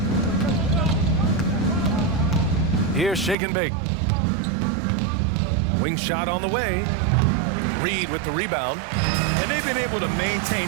Here's shake and bake. Wing shot on the way. Reed with the rebound. And they've been able to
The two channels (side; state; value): left; drops out; at 3.4 s